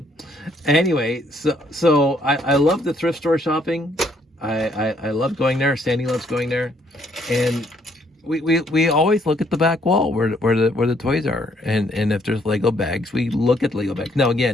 Anyway, so I love the thrift store shopping. I love going there. Sandy loves going there, and we always look at the back wall where the toys are, and if there's Lego bags, we look at Lego bags. Now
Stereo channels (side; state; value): both; normal; correlation 0.68